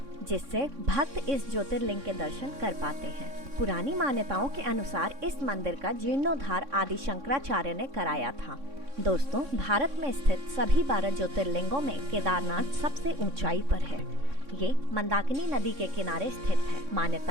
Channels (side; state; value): left; late; 3.6 ms